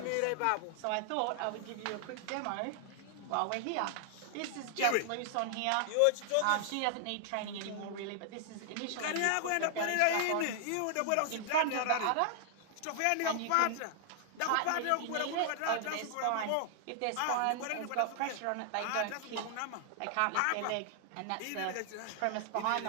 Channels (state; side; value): different; both; correlation 0.00